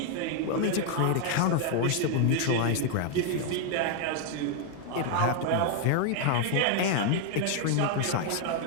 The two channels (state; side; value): different; both; correlation 0.00